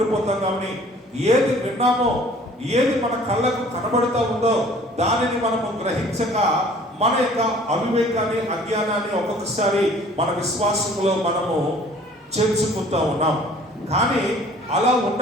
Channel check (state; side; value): normal; both; correlation 0.52